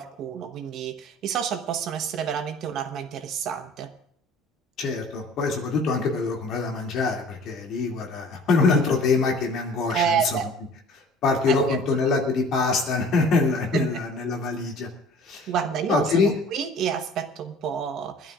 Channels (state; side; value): normal; both; correlation 0.48